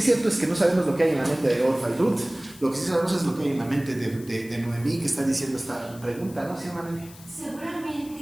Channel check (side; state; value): left; noise; hiss, 20 dB below the sound